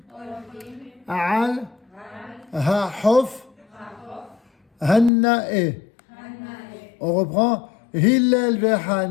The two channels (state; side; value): drops out; right; at 5.1 s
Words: Al, Ha'hof, Hannae. On reprend. Hillel